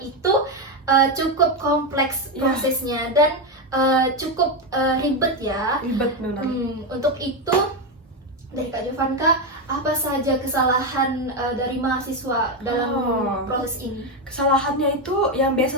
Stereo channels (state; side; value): normal; both; correlation 0.09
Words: itu cukup kompleks prosesnya dan cukup ribet ya. Ribet benar. Untuk itu dari Kak Jovanka, apa saja kesalahan dari mahasiswa dalam proses ini? Kesalahannya itu yang